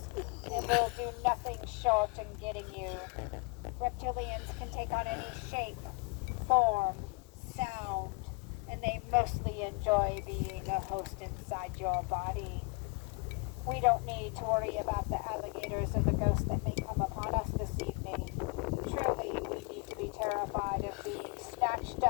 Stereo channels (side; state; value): right; quieter; 30.0 dB